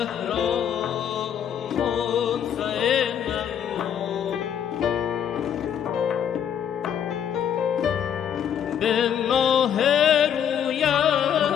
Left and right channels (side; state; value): right; quieter; 8.9 dB